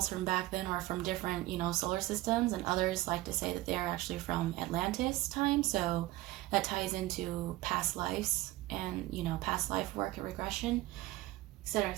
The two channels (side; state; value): left; quieter; 18.0 dB